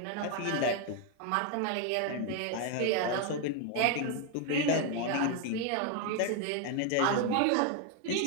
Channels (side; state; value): both; different; correlation 0.01